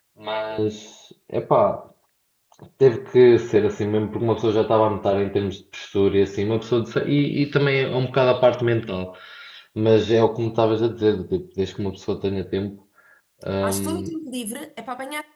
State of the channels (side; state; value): both; identical; correlation 1.00